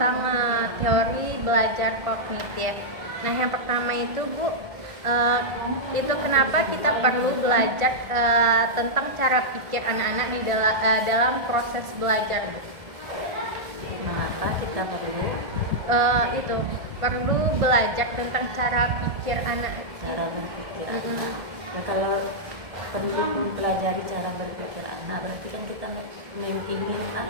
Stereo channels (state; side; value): late; left; 1.5 ms